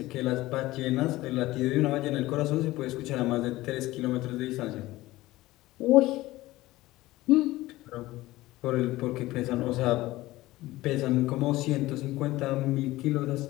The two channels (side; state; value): right; quieter; 17.8 dB